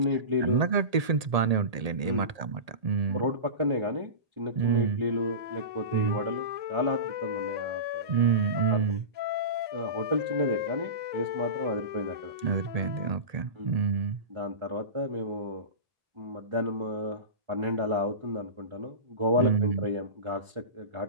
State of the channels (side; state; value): left; late; 1.8 ms